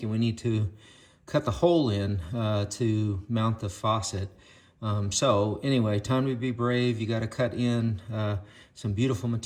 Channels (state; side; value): identical; both; correlation 1.00